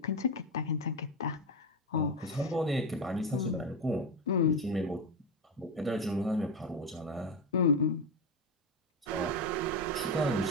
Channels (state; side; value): normal; both; correlation 0.14